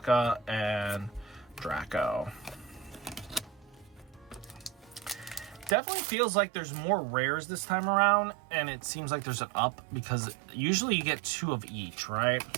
and Draco. Definitely feels like there's more rares this time around, and it seems like there's an up because usually you get 2 of each, right?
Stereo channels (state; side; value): drops out; left; at 5.8 s